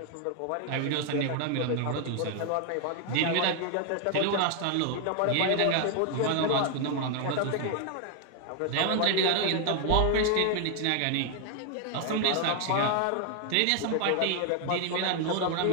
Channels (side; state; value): both; different; correlation 0.00